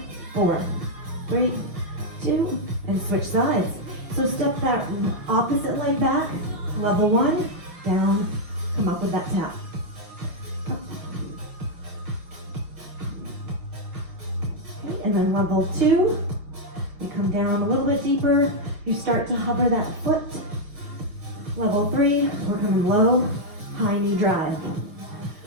4, 3, 2, and switch sides. So step that opposite leg back. Level 1, down, come up with that tap. Okay, and then level 2, you come down a little bit deeper. You start to hover that foot. Level 3, we're coming low, high knee drive.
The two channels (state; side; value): late; left; 5.7 ms